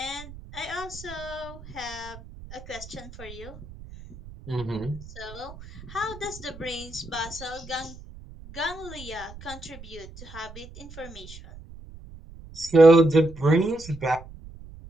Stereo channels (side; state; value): right; noise; rumble, 16 dB below the sound